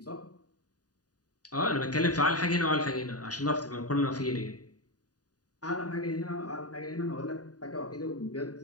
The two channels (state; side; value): late; right; 0.68 ms